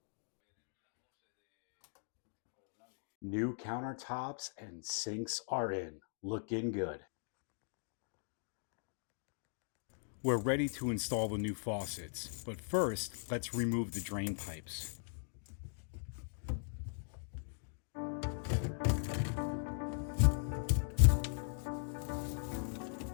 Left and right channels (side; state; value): right; silent; digital silence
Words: New countertops and sinks are in. Looking good. We're ready to install the new faucets, but first, let's remove the drain pipes.